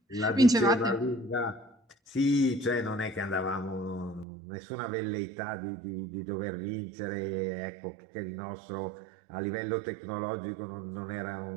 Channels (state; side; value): drops out; left; at 4.2 s